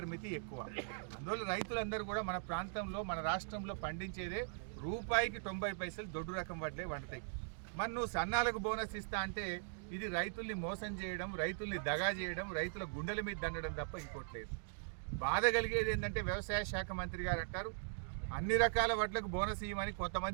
ఎక్కువ. అందువల్ల రైతులందరూ కూడా మన ప్రాంతంలో మన రాష్ట్రంలో పండించేదే రూపాయికి 90 పైసలు దొడ్డు రకం వడ్లే వండుతాయి. మరి నువ్వు సన్నాలకు బోనస్ ఇస్తా అంటే ఇది రైతుల్ని మోసం చేయడం, రైతుల్ని దగా చేయడం, రైతుల గుండెల మీద దండడం తప్ప ఇంకోట్లేదు. బాధ కలిగేది ఏంటంటే వ్యవసాయ శాఖ మంత్రి గారు అంటారు అన్ని రకాల వడ్లకు బోనస్ ఇవ్వమని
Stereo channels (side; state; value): left; silent; digital silence